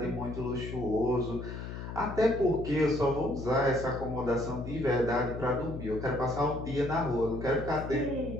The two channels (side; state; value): left; noise; hum, 8 dB below the sound